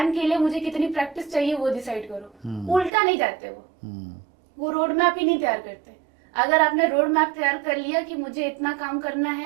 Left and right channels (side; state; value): left; drops out; at 2.9 s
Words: के लिए मुझे कितनी प्रैक्टिस चाहिए वो डिसाइड करो। उल्टा नहीं जाते वो रोड मैप ही नहीं तैयार करते। अगर आपने रोड मैप तैयार कर लिया कि मुझे इतना काम करना